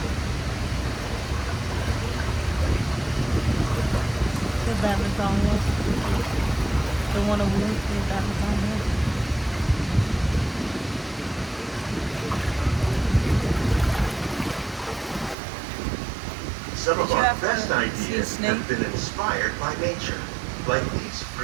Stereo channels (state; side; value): drops out; left; at 15.4 s